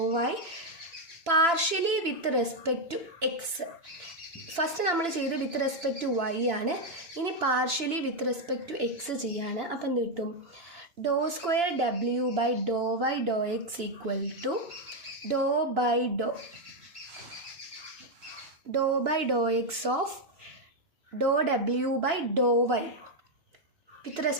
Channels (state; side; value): late; left; 2.9 ms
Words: Y partially with respect to X. First നമ്മൾ ചെയ്ത് with respect to Y ആണ്. ഇനി partially with respect to X ചെയ്യാണ്. അപ്പം എന്ത് കിട്ടും? ഡോ square W by Dr Y Dr X equal to Dr by Dr X of Dr W by Dr Y with